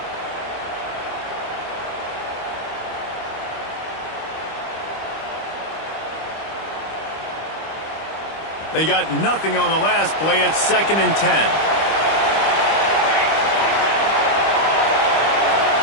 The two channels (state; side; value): late; right; 25 ms